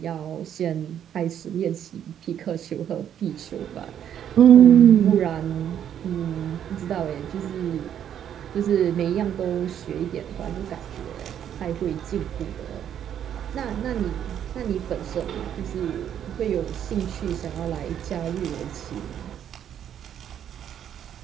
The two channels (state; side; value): quieter; left; 9.7 dB